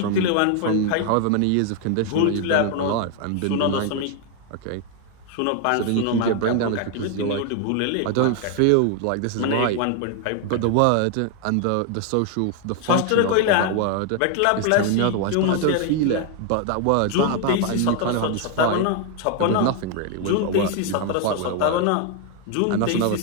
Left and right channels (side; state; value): both; different; correlation 0.00